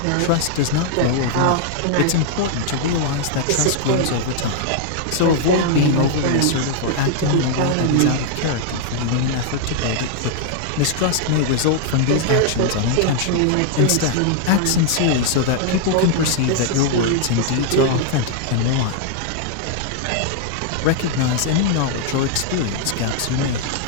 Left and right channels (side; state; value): both; different; correlation 0.00